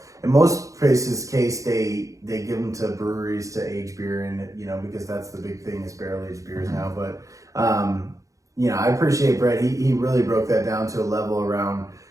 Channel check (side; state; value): left; late; 0.16 ms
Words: In most places case, they give them to breweries to age beer in, you know, because that's the big thing is barrel aged beers now. But you know, I appreciate Brett. He really broke that down to a level around,